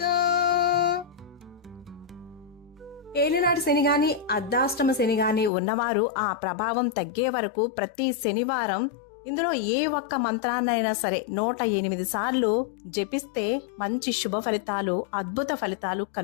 ఏలినాటి శని గాని అర్ధాష్టమ శని గాని ఉన్నవారు ఆ ప్రభావం తగ్గే వరకు ప్రతి శనివారం ఇందులో ఏ ఒక్క మంత్రాన్నైనా సరే 108 సార్లు జపిస్తే మంచి శుభ ఫలితాలు, అద్భుత ఫలితాలు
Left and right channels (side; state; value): right; drops out; at 5.5 s